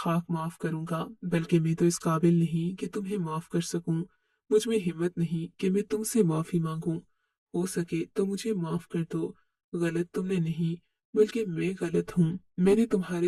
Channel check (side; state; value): both; identical; correlation 1.00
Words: माफ करूंगा, बल्कि मैं तो इस काबिल नहीं कि तुम्हें माफ कर सकूं। मुझ में हिम्मत नहीं कि मैं तुमसे माफी मांगूं। हो सके तो मुझे माफ कर दो। गलत तुमने नहीं, बल्कि मैं गलत हूँ। मैंने